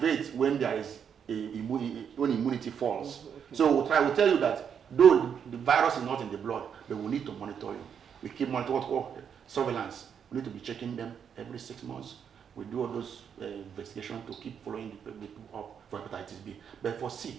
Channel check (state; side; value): quieter; left; 7.7 dB